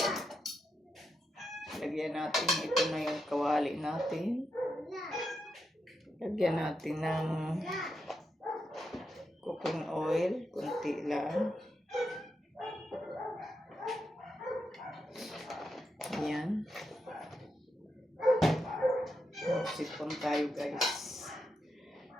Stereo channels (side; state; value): both; normal; correlation 0.85